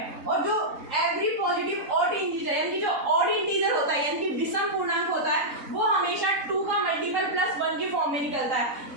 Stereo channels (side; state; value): left; late; 3.7 ms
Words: और जो एवरी पॉजिटिव ऑड इंटीजर यानी कि जो ऑड इंटीजर होता है यानी कि विषम पूर्णांक होता है वो हमेशा 2 का मल्टीपल प्लस 1 के फॉर्म में निकलता है,